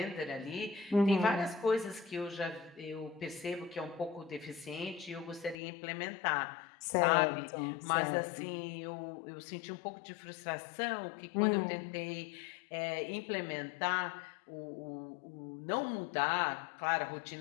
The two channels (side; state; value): right; drops out; at 5.6 s